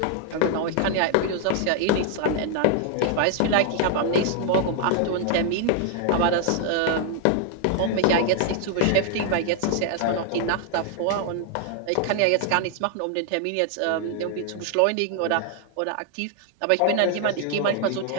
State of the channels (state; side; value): different; both; correlation 0.00